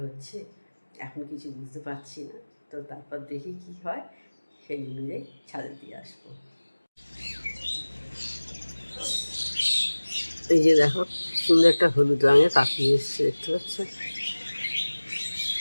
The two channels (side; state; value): both; inverted; correlation -1.00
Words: হচ্ছে, এখন কিছু বুঝতে পারছি না। তো তারপর দেখি কি হয়, সেই অনুযায়ী ছাদে দিয়ে আসবো। এই যে দেখো, সুন্দর একটা হলুদ রঙের পাখি এসছে, দেখতে পাচ্ছ।